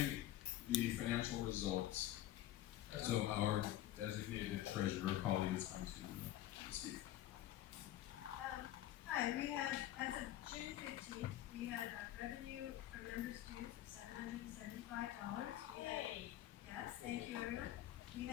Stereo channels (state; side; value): quieter; right; 13.6 dB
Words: the financial results. So our designated treasurer, Polly, is going to speak. Hi, we had, as of June 15th, we had revenue from members' dues of $775. Yes, thank you, everyone. We